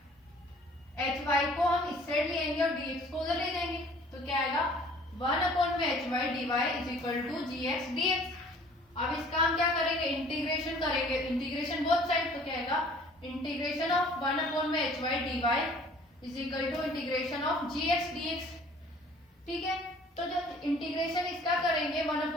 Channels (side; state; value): both; normal; correlation 0.53